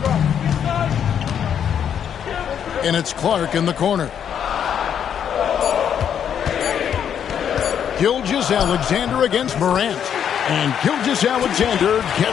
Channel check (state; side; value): quieter; right; 8.6 dB